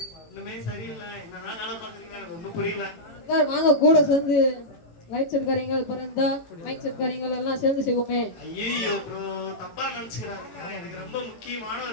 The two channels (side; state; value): right; late; 18 ms